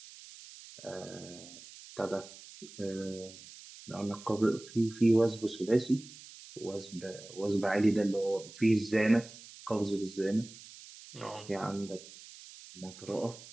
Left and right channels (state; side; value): noise; right; hiss, 17 dB below the sound